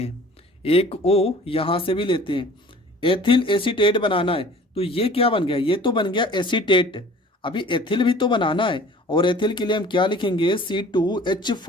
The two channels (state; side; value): normal; both; correlation 0.48